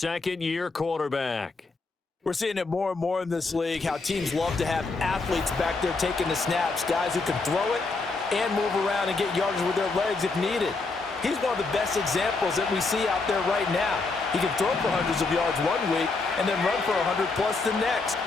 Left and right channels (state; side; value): quieter; right; 3.8 dB